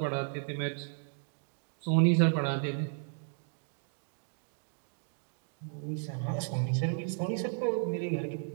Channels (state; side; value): silent; left; 55 dB below the other